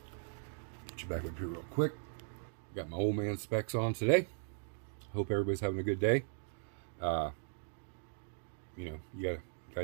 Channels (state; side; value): silent; left; digital silence